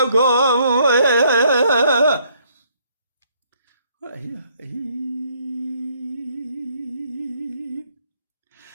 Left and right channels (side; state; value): both; inverted; correlation -0.66